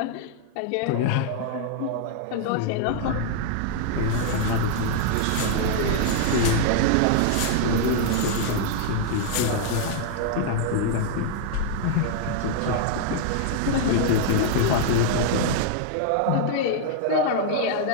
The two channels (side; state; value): both; different; correlation -0.01